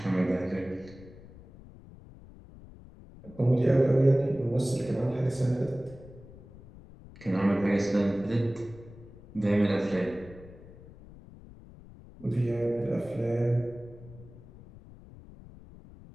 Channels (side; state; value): left; noise; rumble, 19 dB below the sound